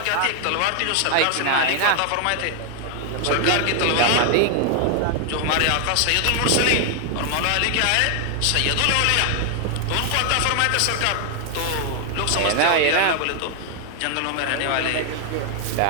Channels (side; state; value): both; different; correlation 0.00